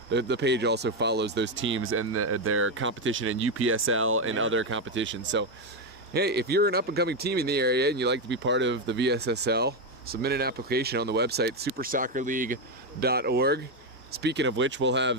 the page also follows those teams and their competition in UPSL and other competitions. So hey, if you're an up-and-coming team in the area and you'd like to be part of the VSSL, submit an application on the website, supersoccerleague.org. Speaking of which, we'll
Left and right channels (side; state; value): both; normal; correlation 0.07